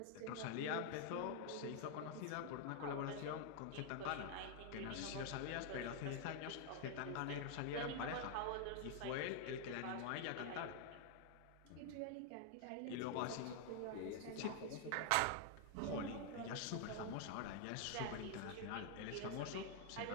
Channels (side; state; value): both; different; correlation 0.00